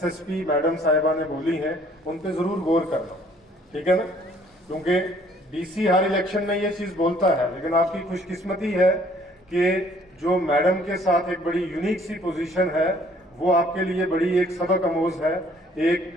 मैडम साहिबा ने बोली हैं उन पे जरूर गौर करना, ठीक है ना। क्योंकि डीसी हर इलेक्शन में ये चीज बोलता है, लेकिन आपकी खुशकिस्मती है कि जो मैडम के साथ एक बड़ी यूनिक सी पोजीशन है, वो आपके लिए बड़ी एक सबक आमोज है।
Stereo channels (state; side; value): normal; both; correlation 0.60